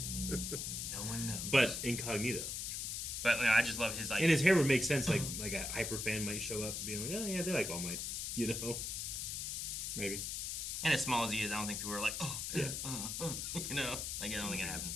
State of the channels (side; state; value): left; noise; hiss, 3 dB below the sound